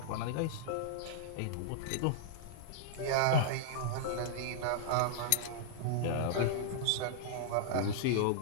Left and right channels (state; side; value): different; both; correlation -0.02